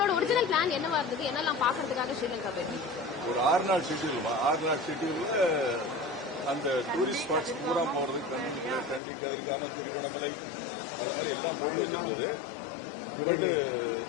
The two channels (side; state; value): right; drops out; at 9.0 s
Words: ஒரிஜினல் பிளான் என்னவா இருந்தது? என்னெல்லாம் பாக்குறதுக்காக ஸ்ரீலங்கா போயிருந்தீங்க? ஒரு 6 நாள் ஷெட்யூல். 6 நாள் ஷெட்யூல்ல அந்த டூரிஸ்ட் ஸ்பாட்ஸ் பூரா போறதுக்கு கண்டி கதிர்காமம், திருவண்ணாமலை, அது மாதிரி எல்லாம் போட்டு வச்சிருந்தது. பட்